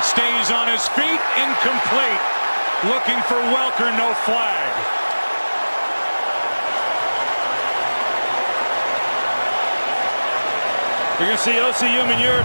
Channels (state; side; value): inverted; both; correlation -1.00